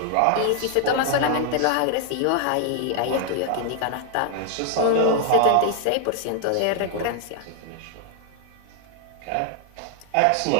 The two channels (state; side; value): different; both; correlation 0.00